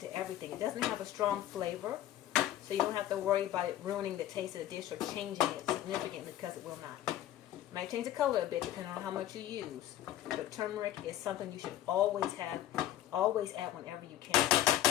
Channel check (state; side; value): quieter; right; 12.8 dB